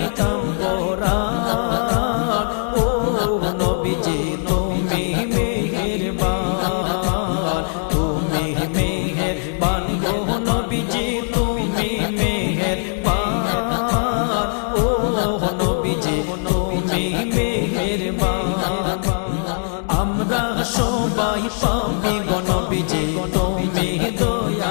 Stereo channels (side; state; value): right; silent; 65 dB below the other